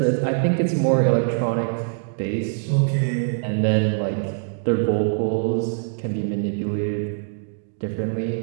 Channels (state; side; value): silent; left; digital silence